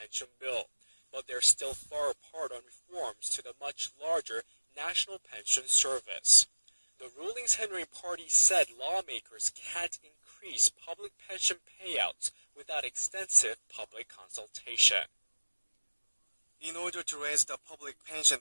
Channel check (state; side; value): inverted; both; correlation -1.00